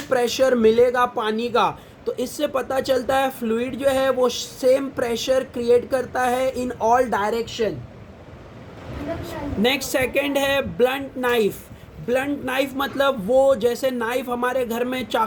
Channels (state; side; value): identical; both; correlation 1.00